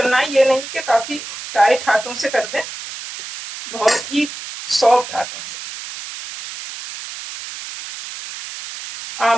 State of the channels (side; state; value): right; noise; hiss, 11 dB below the sound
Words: है, ये नहीं कि काफी टाइट हाथों से कर दें, बहुत ही सॉफ्ट हाथों से।